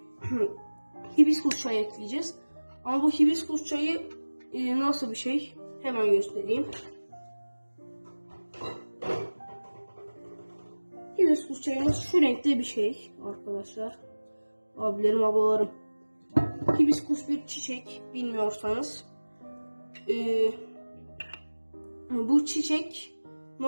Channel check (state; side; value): inverted; both; correlation -1.00